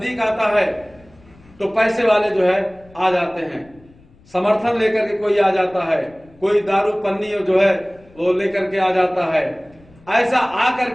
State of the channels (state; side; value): noise; left; rumble, 27 dB below the sound